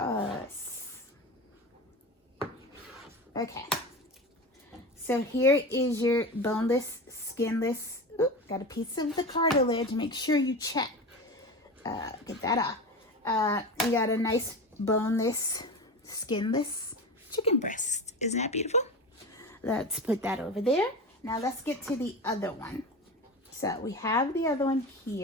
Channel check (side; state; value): both; normal; correlation 0.27